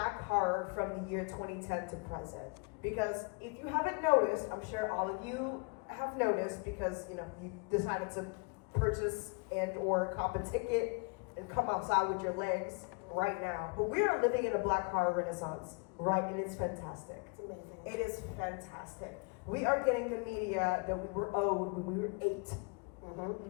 horror from the year 2010 to present. Because if you haven't noticed, I'm sure all of you have noticed because you decided to purchase and or cop a ticket and come outside with your legs right now. But we are living in a Black horror renaissance, right? And it's fantastic. It's amazing. It is fantastic. We are getting the media that we were owed when we were 8.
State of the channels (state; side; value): quieter; right; 33.5 dB